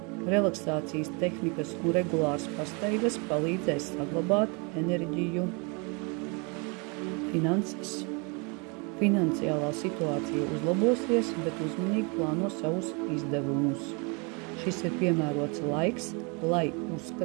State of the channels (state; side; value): quieter; left; 32.2 dB